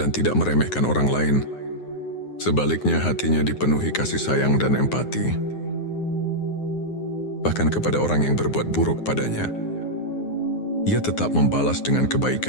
tidak meremehkan orang lain. Sebaliknya, hatinya dipenuhi kasih sayang dan empati, bahkan kepada orang yang berbuat buruk padanya. Ia tetap membalas dengan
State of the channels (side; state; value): right; late; 9.6 ms